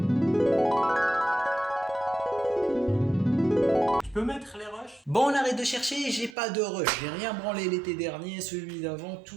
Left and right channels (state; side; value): drops out; left; at 6.4 s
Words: Tu peux mettre les rushs? Bon, on arrête de chercher, j'ai pas de rush, j'ai rien branlé l'été dernier, celui d'avant,